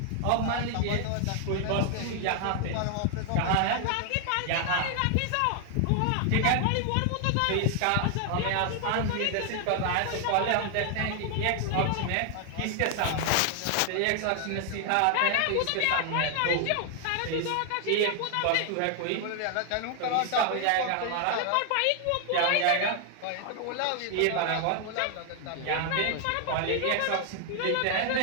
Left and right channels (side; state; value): both; different; correlation 0.00